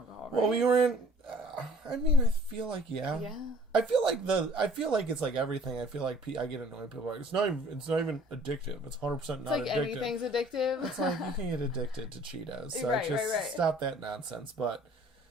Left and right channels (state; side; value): normal; both; correlation 0.53